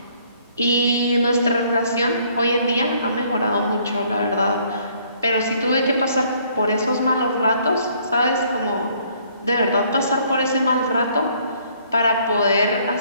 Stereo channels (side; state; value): both; inverted; correlation -0.63